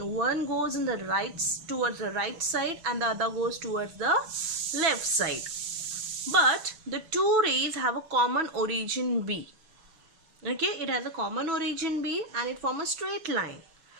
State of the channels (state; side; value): late; left; 6.2 ms